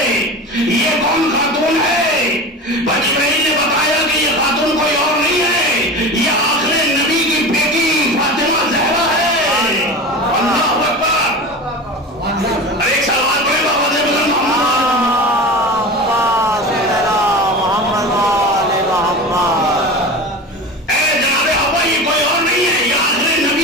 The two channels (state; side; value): normal; both; correlation 0.30